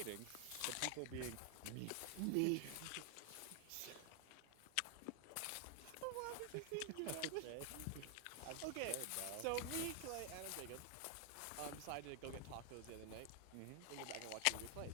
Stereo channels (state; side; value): different; both; correlation 0.00